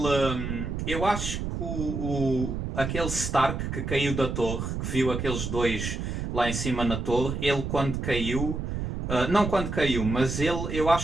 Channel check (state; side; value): noise; right; rumble, 4 dB below the sound